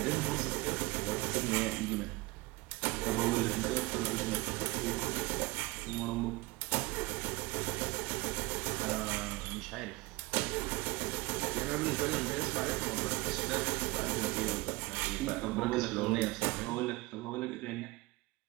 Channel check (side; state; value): left; quieter; 22.2 dB